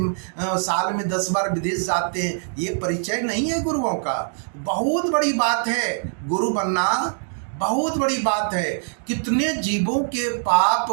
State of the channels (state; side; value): silent; left; digital silence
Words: साल में 10 बार विदेश जाते हैं। ये परिचय नहीं है गुरुओं का। बहुत बड़ी बात है गुरु बनना, बहुत बड़ी बात है। कितने जीवों के पाप